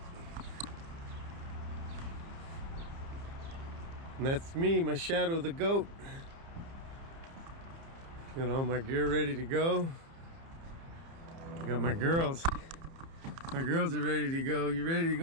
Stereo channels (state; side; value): late; left; 30 ms